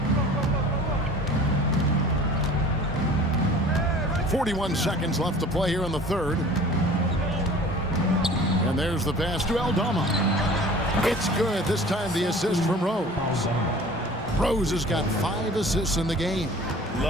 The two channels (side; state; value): both; normal; correlation 0.45